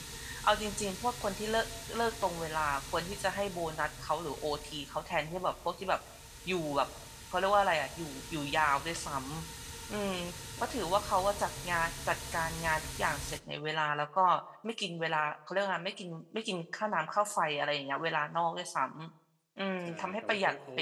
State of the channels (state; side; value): identical; both; correlation 1.00